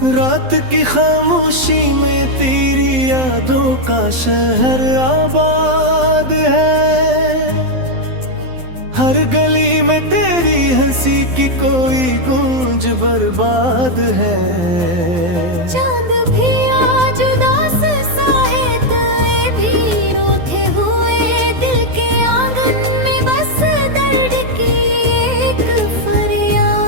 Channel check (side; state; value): left; late; 12 ms